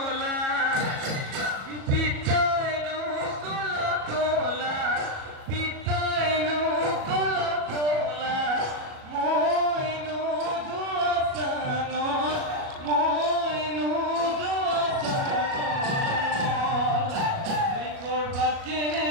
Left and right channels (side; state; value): left; late; 37 ms